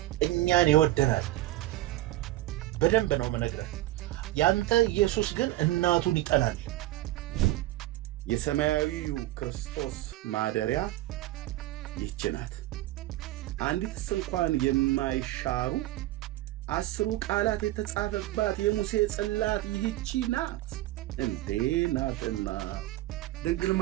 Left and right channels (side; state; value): left; quieter; 16.2 dB